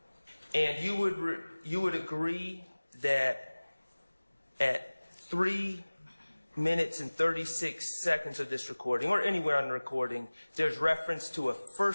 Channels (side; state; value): both; inverted; correlation -1.00